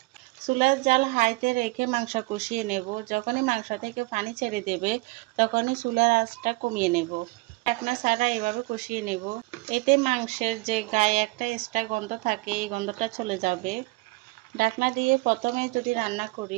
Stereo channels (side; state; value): left; quieter; 23.2 dB